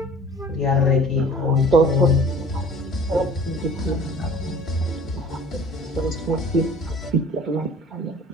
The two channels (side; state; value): both; normal; correlation 0.47